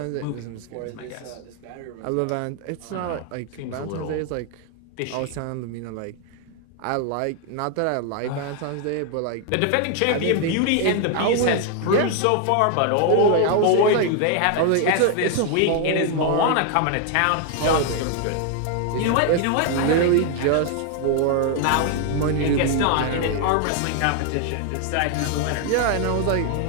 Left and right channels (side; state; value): both; different; correlation 0.00